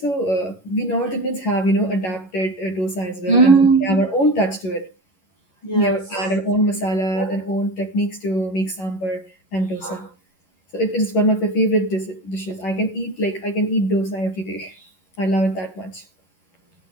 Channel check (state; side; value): late; right; 11 ms